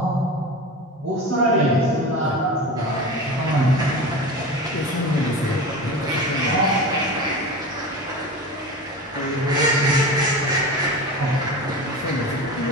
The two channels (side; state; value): both; normal; correlation 0.30